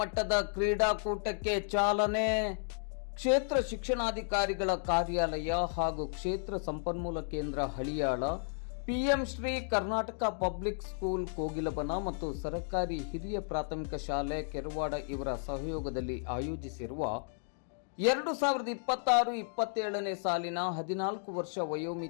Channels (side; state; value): right; silent; digital silence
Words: ಕ್ರೀಡಾಕೂಟಕ್ಕೆ ಚಾಲನೆ. ಕ್ಷೇತ್ರ ಶಿಕ್ಷಣಾಧಿಕಾರಿಗಳ ಕಾರ್ಯಾಲಯ ಹಾಗೂ ಕ್ಷೇತ್ರ ಸಂಪನ್ಮೂಲ ಕೇಂದ್ರ Haliyal, PM Shri Karnataka public school Kogilabana ಮತ್ತು ಸರ್ಕಾರಿ ಹಿರಿಯ ಪ್ರಾಥಮಿಕ ಶಾಲೆ ಕೆರವಾಡ ಇವರ ಸಹಯೋಗದಲ್ಲಿ ಆಯೋಜಿಸಿರುವ 2026-27ನೇ ಸಾಲಿನ 14 ವರ್ಷ